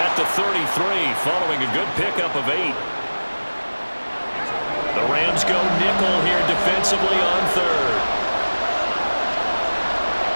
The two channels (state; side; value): inverted; both; correlation -1.00